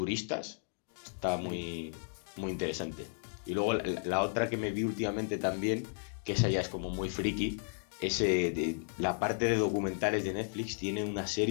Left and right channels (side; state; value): right; silent; digital silence